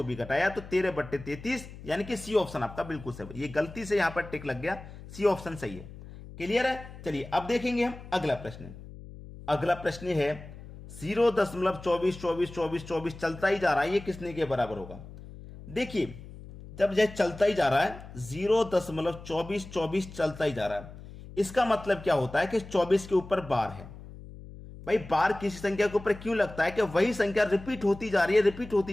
भी कटाया, तो 13/33, यानी कि सी ऑप्शन आपका बिल्कुल सही। ये गलती से यहां पर टिक लग गया, सी ऑप्शन सही है। क्लियर है? चलिए अब देखेंगे हम अगला प्रश्न। अगला प्रश्न है 0.24 चलता ही जा रहा है, ये किसने के बराबर होगा? देखिए, जब यह चलता ही जा रहा है, 0.24 चलता ही जा रहा है, इसका मतलब क्या होता है कि 24 के ऊपर बार है। भाई, बार किसी संख्या के ऊपर क्यों लगता है कि वही संख्या रिपीट होती जा रही है, रिपीट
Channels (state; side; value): noise; left; hum, 15 dB below the sound